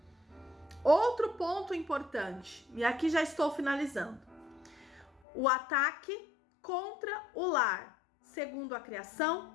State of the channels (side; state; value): right; drops out; at 5.2 s